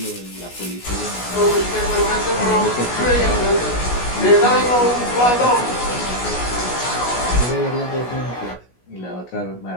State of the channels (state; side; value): late; right; 16 ms